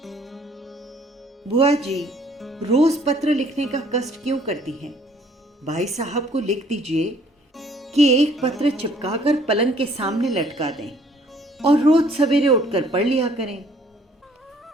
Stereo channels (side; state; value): both; normal; correlation 0.60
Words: बुआ जी रोज पत्र लिखने का कष्ट क्यों करती हैं? भाई साहब को लिख दीजिए कि एक पत्र चिपकाकर पलंग के सामने लटका दें और रोज सवेरे उठकर पढ़ लिया करें।